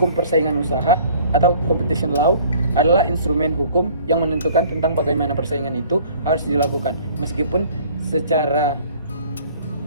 persaingan usaha atau competition law adalah instrumen hukum yang menentukan tentang bagaimana persaingan itu harus dilakukan, meskipun secara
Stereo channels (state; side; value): inverted; both; correlation -0.52